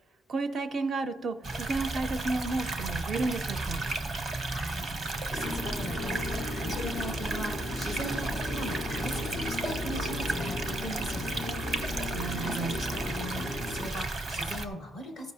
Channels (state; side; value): normal; both; correlation 0.77